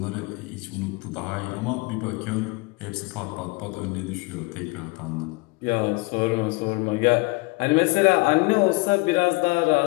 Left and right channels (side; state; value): right; quieter; 26.7 dB